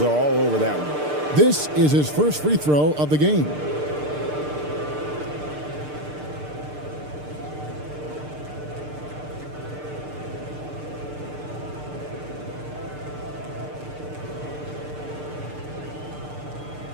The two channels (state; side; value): late; left; 6.7 ms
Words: are all over that one. This is his first free throw of the game.